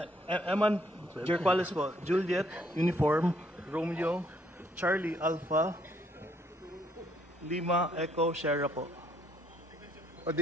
Eman Jorquales po. Juliet, Uniform, Romeo, Charlie, Alpha, Lima, Echo, Sierra po. Or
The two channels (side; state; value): both; normal; correlation 0.68